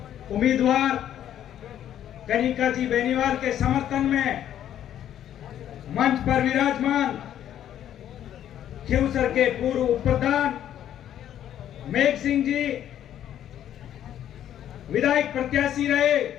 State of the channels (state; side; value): quieter; right; 10.9 dB